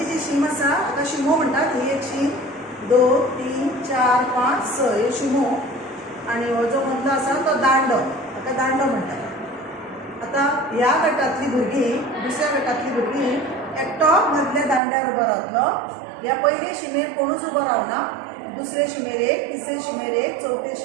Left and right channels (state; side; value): drops out; left; at 14.8 s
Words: जी शीम आसा हाका शिमो म्हणटात. ही एक शीम 2 3 4 5 6 हे शिमो आणि हो जो मदलो आसा तो दांडो, हाका दांडो म्हणटात. आता ह्या गटातली भुरगीं दुसऱ्या गटातली भुरगीं एकटो मदल्या दांड्यार उबो रावतलो. ह्या पयले शिमेर कोणूच उबो रावना. दुसरे शिमेर 1, तिसरे शिमेर 1, चौथे